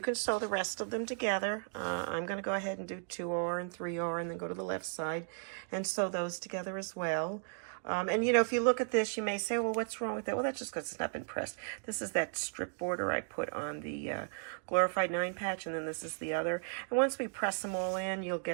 can sew the rest of them together. I'm going to go ahead and do 2R and 3R and then go to the left side and sew those together as well. And you know, if you look at this, you may say, well, what's wrong with that? Well, that's just because it's not been pressed. This is that strip border I put on the Glorified 9 patch, and then this is the other. And once we press them all in, you'll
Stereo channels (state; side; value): silent; left; 54 dB below the other